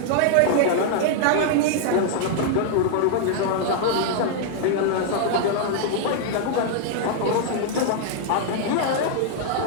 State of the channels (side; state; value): both; different; correlation 0.00